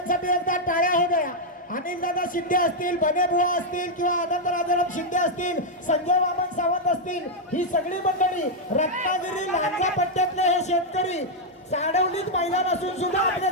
एकदा टाळ्या हो द्या. अनिल दादा शिंदे असतील, बनेबुवा असतील किंवा आनंद राजाराम शिंदे असतील, संजय वामन सावंत असतील, ही सगळी मंडळी रत्नागिरी लांजा पट्ट्यातले हे शेतकरी साडवलीत मैदान असून सुद्धा आपल्या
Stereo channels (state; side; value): normal; both; correlation -0.02